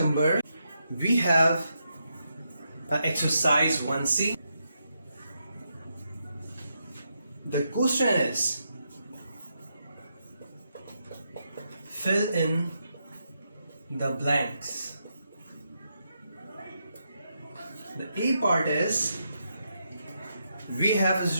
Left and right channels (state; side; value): inverted; both; correlation -0.82